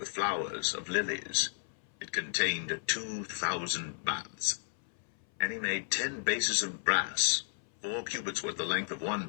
flowers of lilies. It contained 2,000 baths. And he made 10 bases of brass. 4 cubits was the length of one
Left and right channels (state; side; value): silent; right; 55 dB below the other